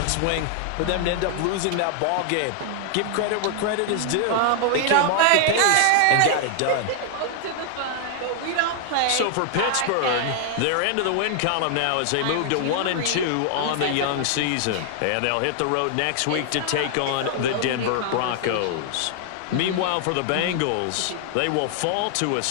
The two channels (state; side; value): different; both; correlation 0.00